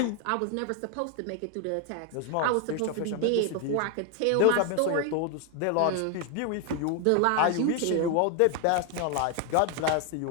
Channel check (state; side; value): different; both; correlation 0.01